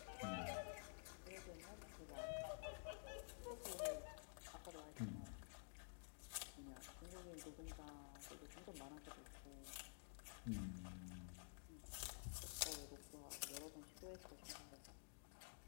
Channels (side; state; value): right; silent; digital silence